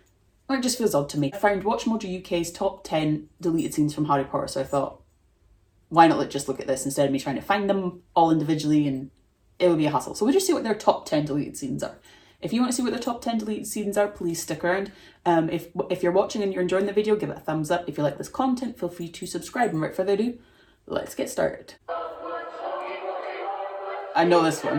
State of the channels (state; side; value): identical; both; correlation 1.00